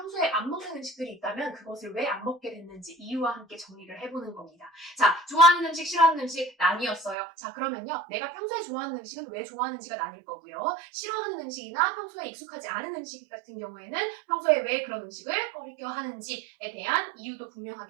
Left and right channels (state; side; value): drops out; left; at 7.2 s